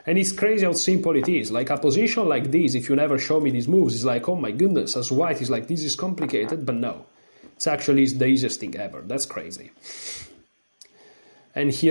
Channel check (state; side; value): inverted; both; correlation -1.00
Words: And it's crazy how simple it is. Like a position like this, if you never show me these moves, it's like, oh my goodness, as white is like, this is complicated, but no. It's actually the easiest thing ever. That's crazy. And